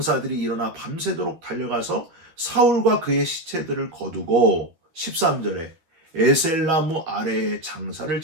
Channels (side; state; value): left; late; 12 ms